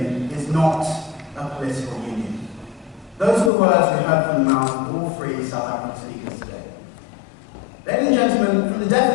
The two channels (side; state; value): right; drops out; at 3.5 s